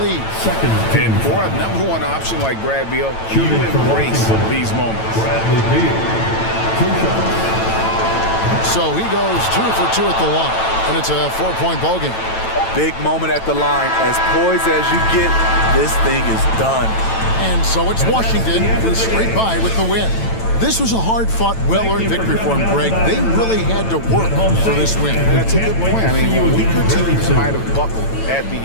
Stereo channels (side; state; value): right; late; 9.0 ms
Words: lead. Second team. And for a number one option like Brad Beal, you embrace these moments. Bradley Beal. 2 shots. So he goes 2 for 2 at the line, and it's a 4-point ball game. Big moment at the line. As poised as you get, this thing is done. And so it's Washington who scraped by with the win. This was a hard-fought, well-earned victory for them, Greg. They really had to work for this win. That's a good point. I mean, weaker teams might have buckled at the